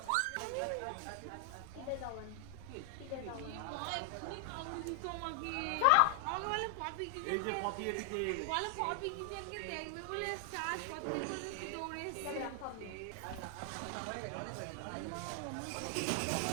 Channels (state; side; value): different; both; correlation 0.00